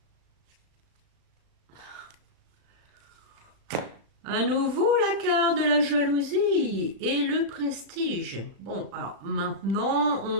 À nouveau, la carte de la jalousie et le prestige. Bon, alors maintenant,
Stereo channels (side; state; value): left; late; 35 ms